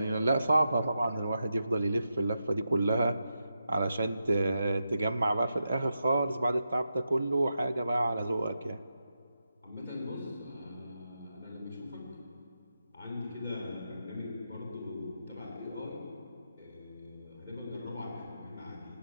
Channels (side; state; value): both; inverted; correlation -0.87